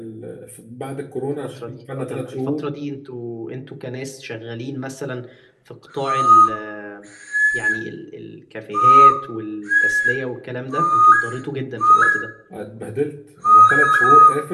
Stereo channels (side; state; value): both; identical; correlation 1.00